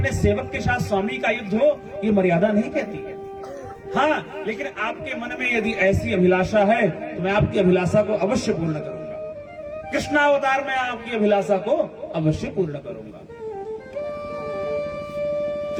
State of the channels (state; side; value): identical; both; correlation 1.00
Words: सेवक के साथ स्वामी का युद्ध हो ये मर्यादा नहीं कहती है। हाँ, लेकिन आपके मन में यदि ऐसी अभिलाषा है तो मैं आपकी अभिलाषा को अवश्य पूर्ण करूंगा। कृष्णावतार में आपकी अभिलाषा को अवश्य पूर्ण करूंगा।